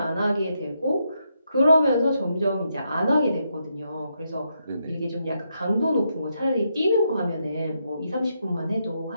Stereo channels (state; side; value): inverted; both; correlation -0.80